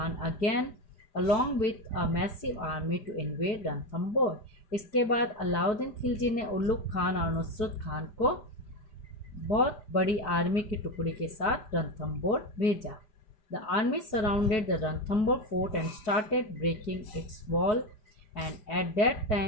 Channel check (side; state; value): right; late; 4.7 ms